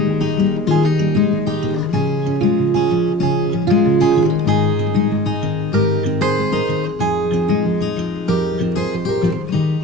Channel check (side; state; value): both; normal; correlation 0.41